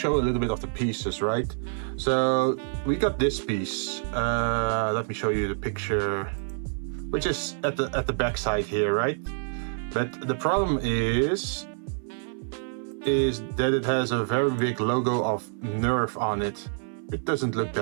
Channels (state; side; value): silent; left; 56 dB below the other